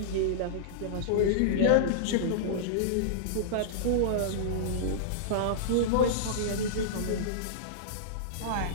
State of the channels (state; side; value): different; both; correlation -0.03